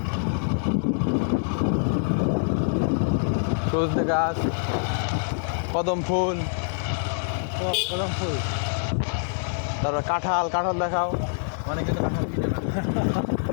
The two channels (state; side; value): silent; right; 61 dB below the other